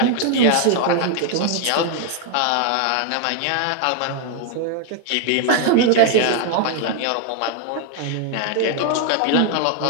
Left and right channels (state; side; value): different; both; correlation 0.00